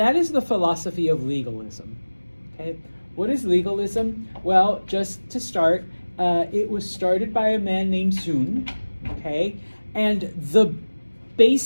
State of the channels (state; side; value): inverted; both; correlation -1.00